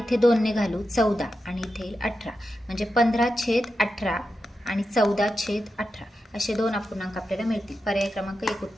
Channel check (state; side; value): normal; both; correlation 0.89